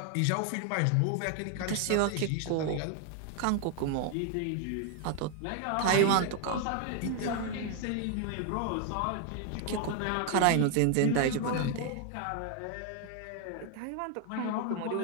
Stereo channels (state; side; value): different; both; correlation 0.00